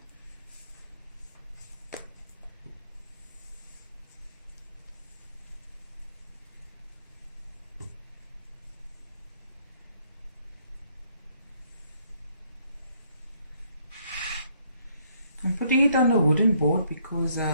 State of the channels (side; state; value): both; inverted; correlation -0.68